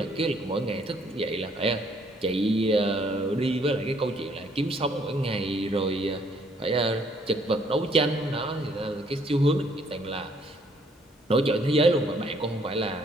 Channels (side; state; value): both; normal; correlation 0.65